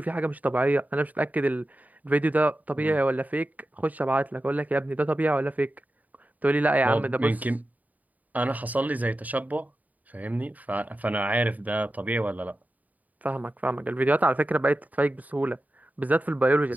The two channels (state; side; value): late; left; 0.076 ms